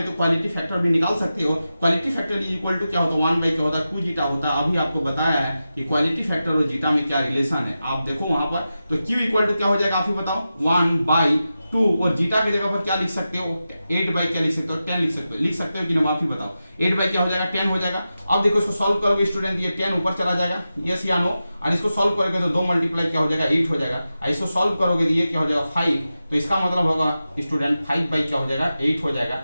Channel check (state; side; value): inverted; both; correlation -0.92